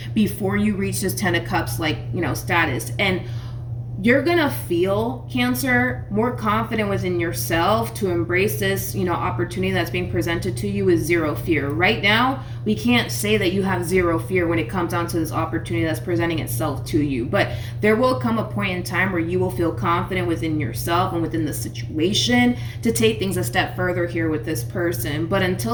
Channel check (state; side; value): identical; both; correlation 1.00